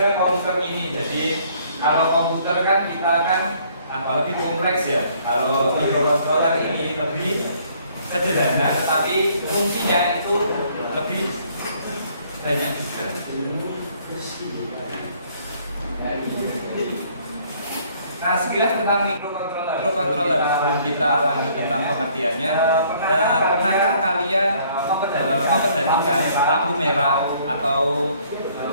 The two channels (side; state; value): both; inverted; correlation -0.62